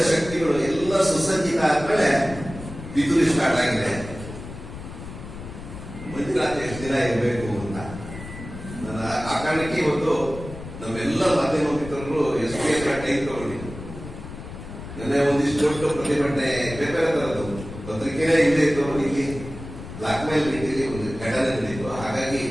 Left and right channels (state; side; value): noise; left; rumble, 12 dB below the sound